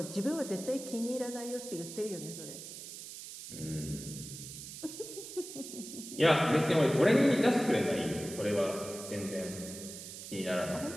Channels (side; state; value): right; noise; hiss, 11 dB below the sound